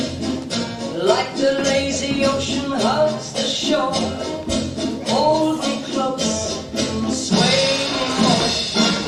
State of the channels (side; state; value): both; identical; correlation 1.00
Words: like the lazy ocean hugs the shore. Hold me close, sway me more,